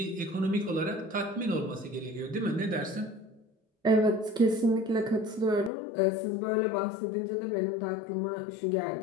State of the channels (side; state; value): right; drops out; at 5.7 s